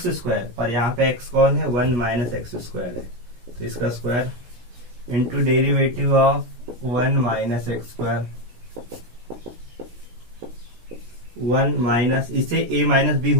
square, पर यहाँ पे x कौन है 1 माइनस एक्स स्क्वायर है, तो इसका square into derivative of 1 minus x square 1 minus, इसे a minus b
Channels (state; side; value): late; left; 17 ms